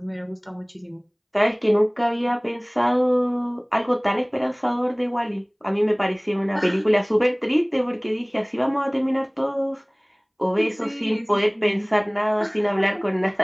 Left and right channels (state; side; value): identical; both; correlation 1.00